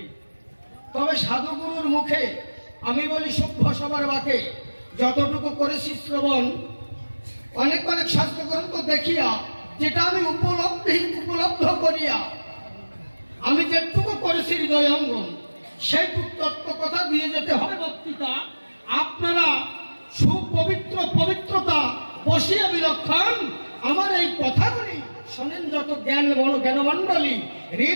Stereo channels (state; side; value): inverted; both; correlation -1.00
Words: তবে সাধুগুরুর মুখে আমি বলি সভ্য সবার বাকে, যতটুকু করেছি শ্রবণ অনেক অনেক শাস্ত্রগ্রন্থ দেখিয়া, যেটা আমি উপলব্ধ করিয়া আমি যেটুকু করেছি হৃদয়ঙ্গম, সেইটুকু তত্ত্ব কথা দিয়ে যেতে হবে বক্তৃতা। আপনারা সুপবিত্র পবিত্রতা বসিয়া বিলক্ষণ আমার এই কথাগুলি শোনেন, যত জ্ঞানমণ্ডলী